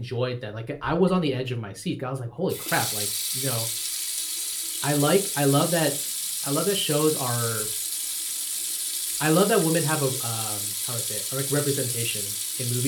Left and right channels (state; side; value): identical; both; correlation 1.00